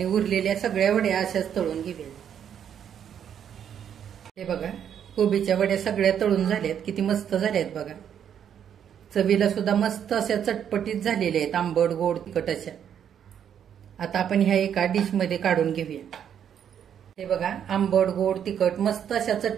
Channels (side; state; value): left; quieter; 8.9 dB